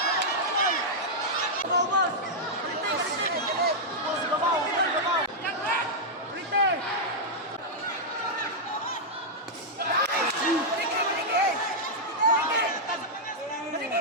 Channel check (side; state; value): both; normal; correlation -0.06